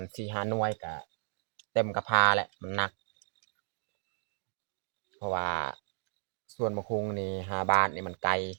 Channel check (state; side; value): silent; left; digital silence